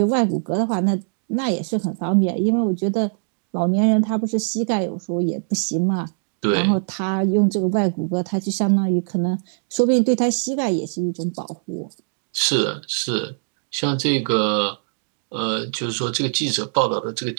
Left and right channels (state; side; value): silent; left; digital silence